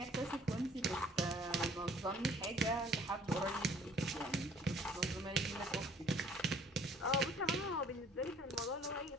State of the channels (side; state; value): both; normal; correlation 0.56